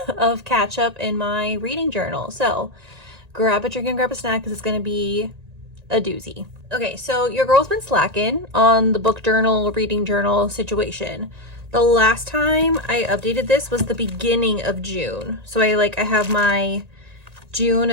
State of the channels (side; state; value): left; late; 1.9 ms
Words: of catch up in my reading journal. So grab a drink and grab a snack because it's going to be a doozy. Okay, so your girl's been slacking on the book journal, reading journal situation. The last time I updated this was the beginning of June. So I have my